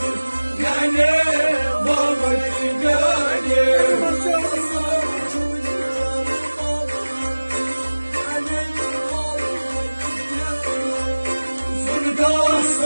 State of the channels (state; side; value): inverted; both; correlation -1.00